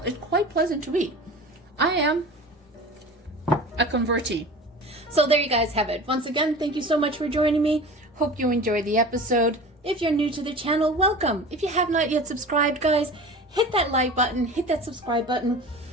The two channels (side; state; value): both; normal; correlation 0.36